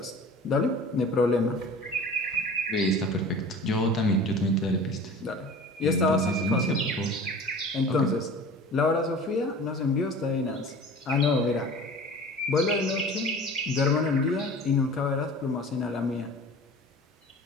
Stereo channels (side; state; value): both; normal; correlation 0.41